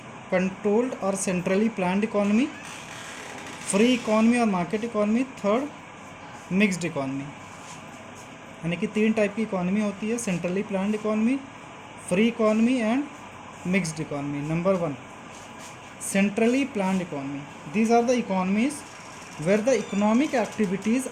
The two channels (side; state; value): both; identical; correlation 1.00